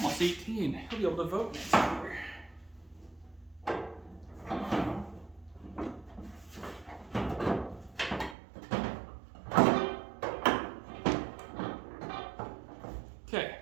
18. He'll be able to vote next year. Okay,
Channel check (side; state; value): left; drops out; at 8.3 s